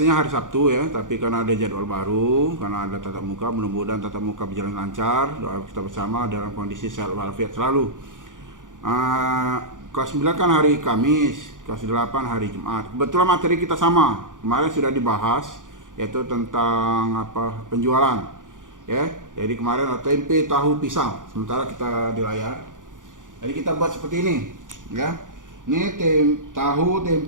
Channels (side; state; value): left; late; 0.88 ms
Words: hari Sabtu ya, tapi karena ada jadwal baru, karena ada tatap muka, mudah-mudahan tatap muka berjalan lancar. Doa kita bersama dalam kondisi sehat walafiat selalu. Kelas 9 kan hari Kamis, kelas 8 hari Jumat. Kebetulan materi kita sama. Kemarin sudah dibahas yaitu tentang penjualan. Ya. Jadi kemarin ada tempe, tahu, pisang. Sementara kita di layar. Jadi kita buat seperti ini, ya. Ini tahu,